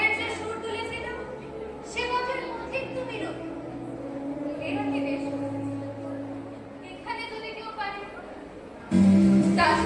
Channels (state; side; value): identical; both; correlation 1.00